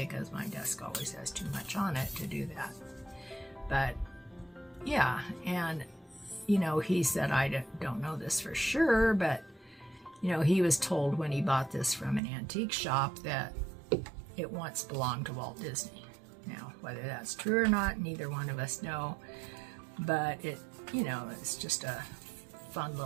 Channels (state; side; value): drops out; left; at 12.2 s